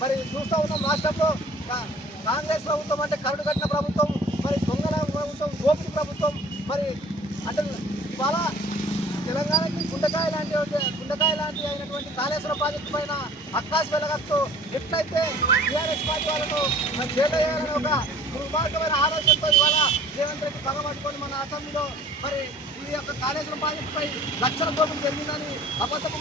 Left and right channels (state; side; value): normal; both; correlation 0.50